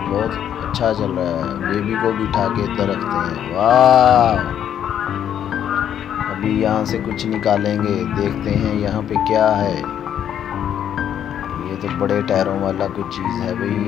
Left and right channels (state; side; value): quieter; right; 9.7 dB